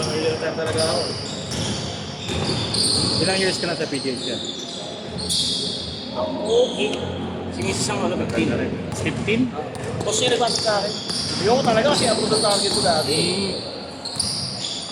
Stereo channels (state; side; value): identical; both; correlation 1.00